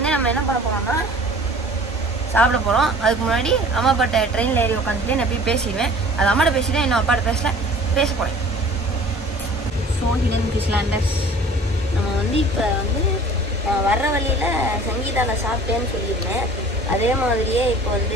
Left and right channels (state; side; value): normal; both; correlation 0.47